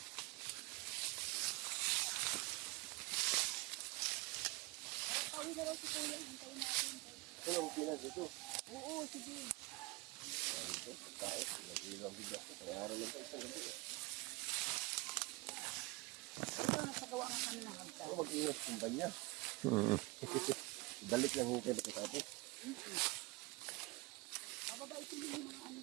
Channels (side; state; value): left; quieter; 24.2 dB